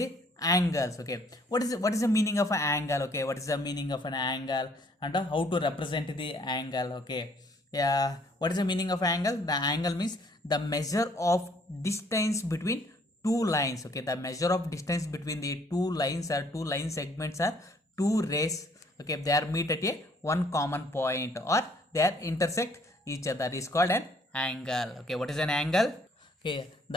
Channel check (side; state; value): both; normal; correlation 0.62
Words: angles, okay. What is the meaning of an angle, okay. What is the meaning of an angle and how to represent the angle, okay. Yeah, what is the meaning of angle? The angle means the measure of distance between two lines, okay. The measure of distance between the two lines or two line segments are two rays, okay. They are meet at a one common point or they are intersect each other is called an angle, okay. What is an angle? Okay,